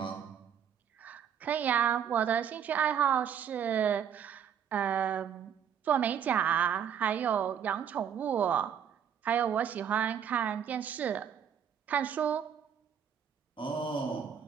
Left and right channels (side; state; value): left; quieter; 8.3 dB